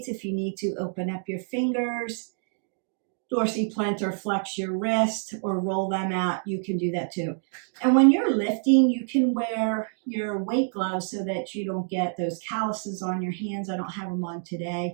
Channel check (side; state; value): left; silent; digital silence